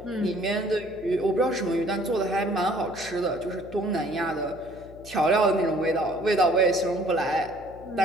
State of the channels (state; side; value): noise; left; hum, 19 dB below the sound